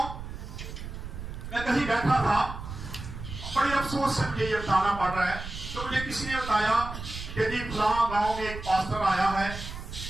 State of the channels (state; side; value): noise; right; rumble, 9 dB below the sound